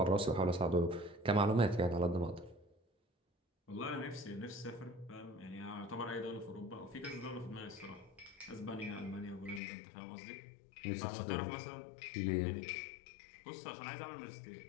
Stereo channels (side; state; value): right; drops out; at 9.6 s